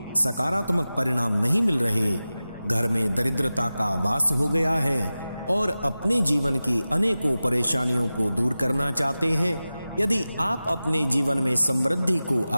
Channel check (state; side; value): inverted; both; correlation -0.95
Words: सकारात्मक परिणाम नहीं मिल रहे, घर में दरिद्रता का वास हो गया है और अपने जीवन की अनेकों परेशानियों को दूर करना चाहते हैं, यदि आप अपने जीवन में समृद्धि को